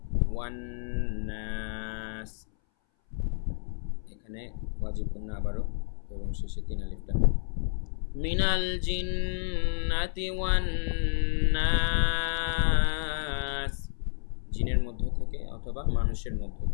ওয়ান নাস এখানে ওয়াজিব গুণনা আবারও, এবং শেষে তিন আলিফ টান। মিনাল জিন্নাতি ওয়ান নাস, জিনের মধ্য থেকে অথবা মানুষের মধ্য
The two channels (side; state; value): right; silent; 58 dB below the other